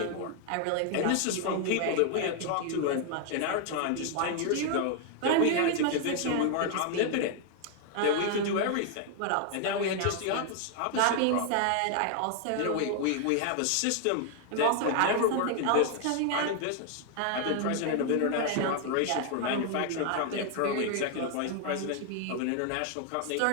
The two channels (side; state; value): both; different; correlation 0.00